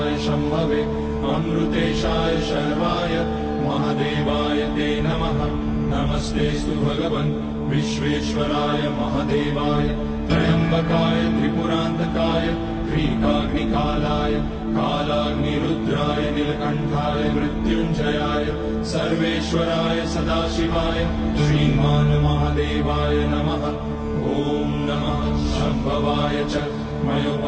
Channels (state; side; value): identical; both; correlation 1.00